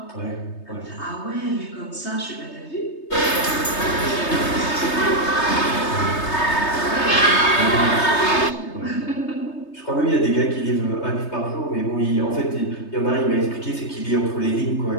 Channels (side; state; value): right; late; 3.3 ms